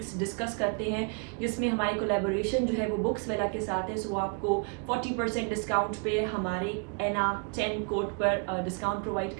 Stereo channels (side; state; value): left; quieter; 37.2 dB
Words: discuss करते हैं, जिसमें हमारी कोलैबोरेशन जो है वो बुक्स वेला के साथ है। सो आपको 40% डिस्काउंट पे हमारे ENA10 कोड पर डिस्काउंट प्रोवाइड